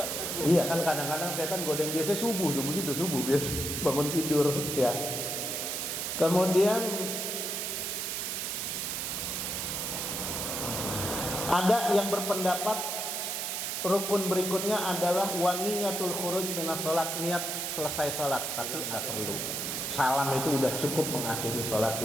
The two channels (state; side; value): noise; right; hiss, 2 dB below the sound